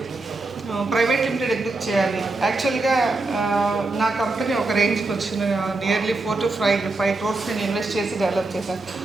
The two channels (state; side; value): quieter; left; 3.2 dB